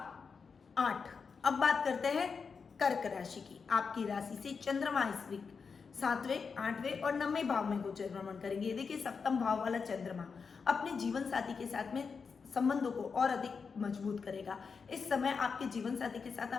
8। अब बात करते हैं कर्क राशि की। आपकी राशि से चंद्रमा इस वीक 7वें, 8वें और 9वें भाव में गोचर भ्रमण करेंगे। देखिए, सप्तम भाव वाला चंद्रमा अपने जीवन साथी के साथ में संबंधों को और अधिक मजबूत करेगा। इस समय आपके जीवन साथी के साथ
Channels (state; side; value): quieter; right; 5.4 dB